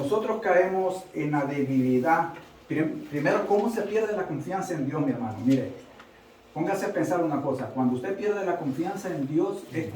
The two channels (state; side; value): identical; both; correlation 1.00